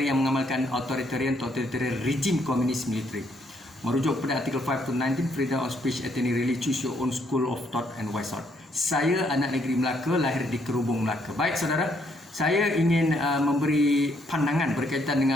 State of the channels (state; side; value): normal; both; correlation 0.71